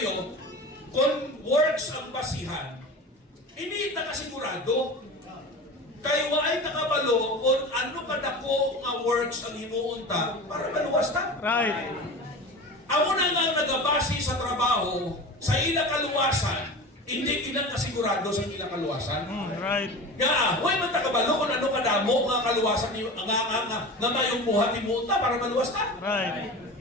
kung works ang basihan, hindi nakasigurado. Kayo ay nakabalo kung ano kadako nga works ang himuunta para maluwas ta. Right. Amo na nga nagabasi sa trabaho, sa ila kaluwasan, Hindi kinakasigurado sa ilang kaluwasan. Right. Nga, huwag man takabalo kung ano kadamo nga kaluwasan ni nga mayong buhat ni Muta para maluwas ka. Right.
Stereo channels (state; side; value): normal; both; correlation 0.32